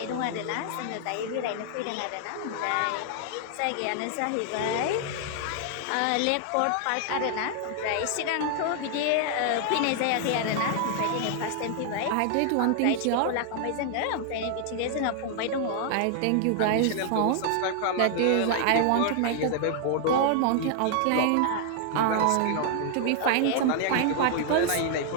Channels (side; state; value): both; different; correlation 0.00